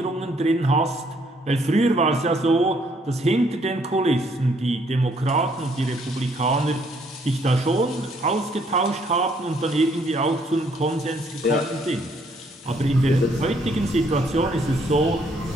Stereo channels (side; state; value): both; normal; correlation 0.67